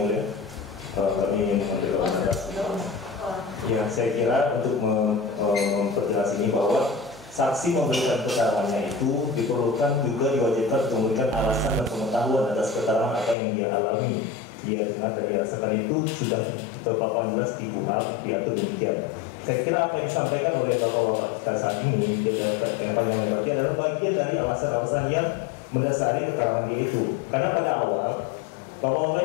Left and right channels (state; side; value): drops out; right; at 13.4 s